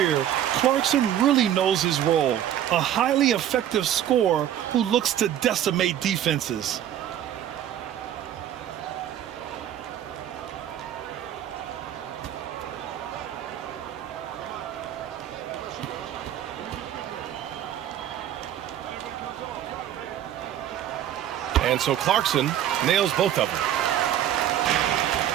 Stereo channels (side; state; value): left; quieter; 11.0 dB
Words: Clarkson really knows his role. A highly effective scorer who looks to decimate defenses. And so Clarkson nails both of them.